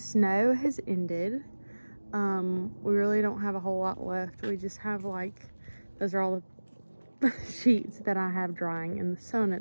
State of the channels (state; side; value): inverted; both; correlation -1.00